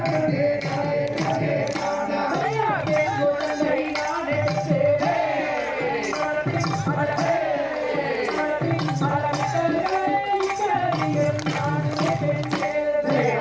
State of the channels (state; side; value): noise; left; hum, 28 dB below the sound